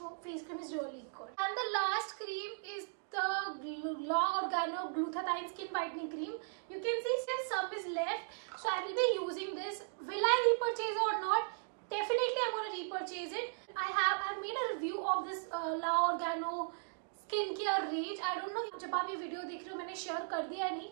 cream is really good. And the last cream is the La Organo Glutathione Skin Whitening Cream. You can see still some is left. So I will be using this. Will I repurchase it or not? Definitely I'm going to repurchase it. I've made a review of this La Organo Skincare range. I don't know जब आप ये video देख रहे हो मैंने share कर दिया है नहीं,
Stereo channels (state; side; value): silent; left; digital silence